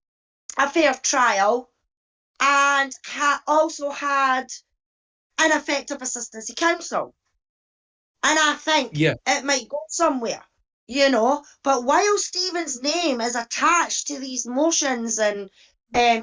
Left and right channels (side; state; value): both; identical; correlation 1.00